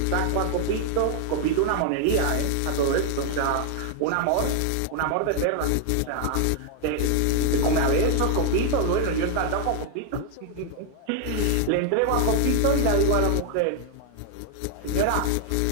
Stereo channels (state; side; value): different; both; correlation 0.00